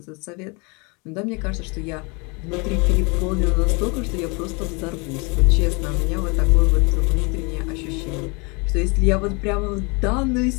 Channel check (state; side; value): quieter; right; 30.2 dB